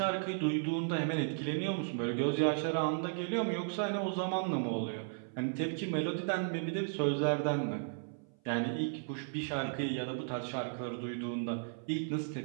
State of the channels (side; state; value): left; silent; 54 dB below the other